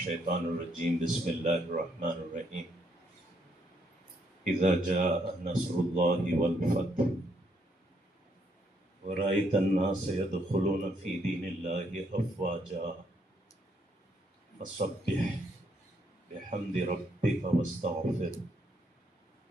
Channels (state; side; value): normal; both; correlation 0.73